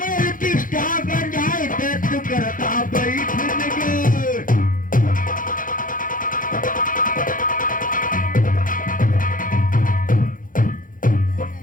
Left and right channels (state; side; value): late; right; 0.39 ms